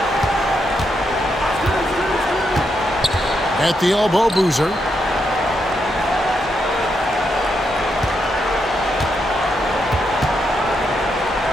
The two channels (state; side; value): normal; both; correlation 0.81